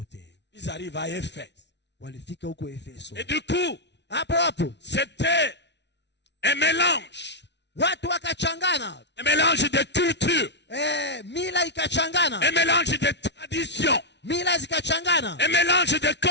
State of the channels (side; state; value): right; late; 0.50 ms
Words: Ils arrivent à Éphèse. walifika huko Efeso. Et du coup, Hapo hapo c'était un mélange de culture, mila ikachangana, un mélange de tradition, mila zikachangana, un mélange de